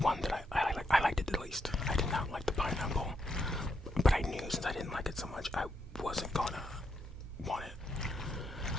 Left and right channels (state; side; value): normal; both; correlation 0.80